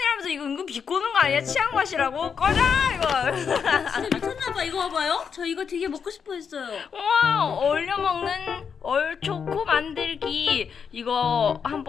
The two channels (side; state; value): right; quieter; 6.6 dB